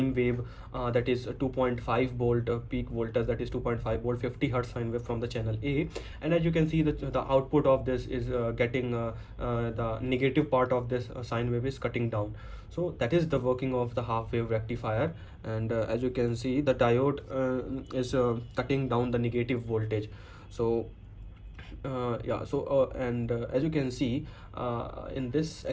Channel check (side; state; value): both; identical; correlation 1.00